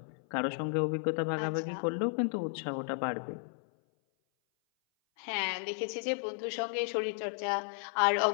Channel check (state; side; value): silent; right; 56 dB below the other